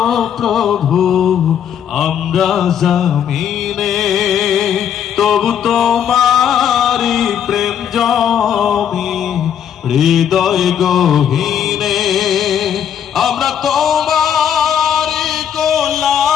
প্রভু, আমরা জমিনে, তবু তোমারি প্রেম জমি হৃদয় গহীনে। আমরা তোমারি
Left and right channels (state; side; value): quieter; right; 9.0 dB